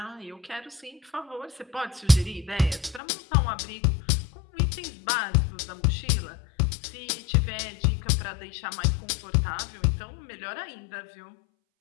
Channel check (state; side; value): drops out; right; at 3.0 s